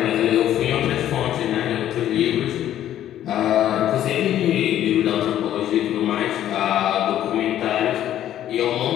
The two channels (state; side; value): quieter; right; 11.8 dB